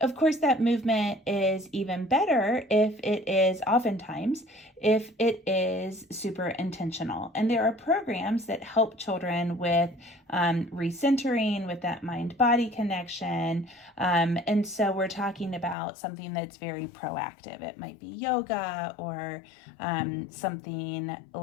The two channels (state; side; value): drops out; right; at 15.8 s